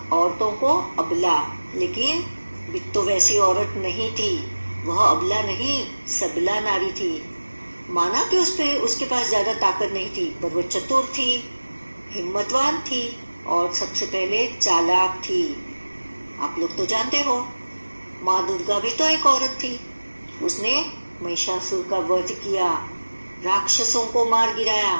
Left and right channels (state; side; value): inverted; both; correlation -1.00